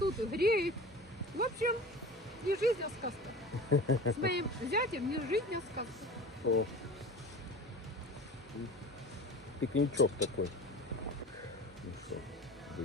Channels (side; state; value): both; normal; correlation 0.36